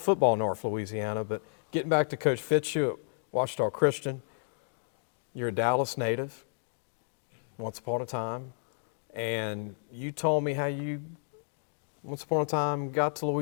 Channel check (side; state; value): right; silent; digital silence